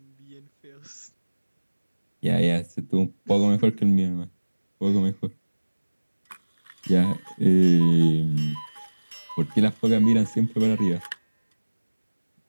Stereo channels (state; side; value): inverted; both; correlation -1.00